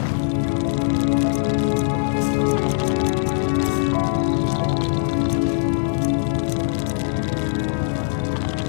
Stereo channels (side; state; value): right; silent; digital silence